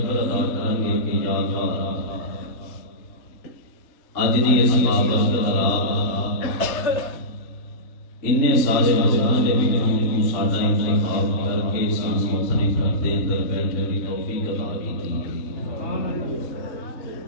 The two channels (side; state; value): right; late; 3.6 ms